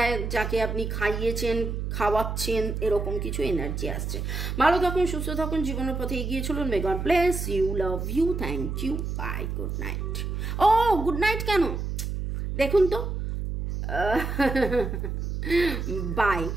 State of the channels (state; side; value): noise; right; hum, 3 dB below the sound